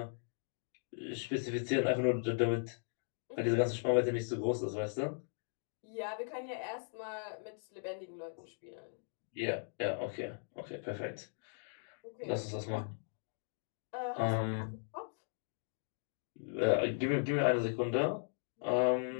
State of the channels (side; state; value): right; silent; digital silence